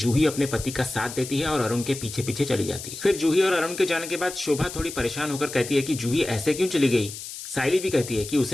अपने पति का साथ देती है और अरुण के पीछे पीछे चली जाती है। फिर जूही और अरुण के जाने के बाद शोभा थोड़ी परेशान होकर कहती है कि जूही ऐसे क्यों चली गई। साइली भी कहती है कि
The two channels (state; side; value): noise; left; hiss, 10 dB below the sound